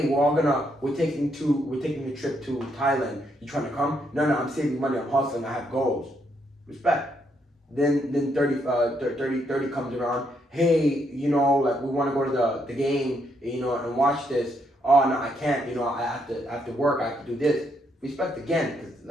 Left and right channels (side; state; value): both; normal; correlation 0.76